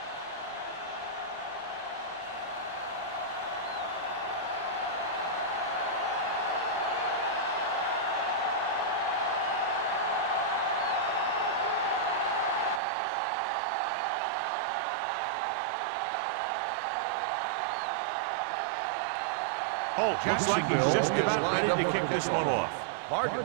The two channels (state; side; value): drops out; left; at 12.8 s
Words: Holt looks like he's just about ready to kick this one off. Hardman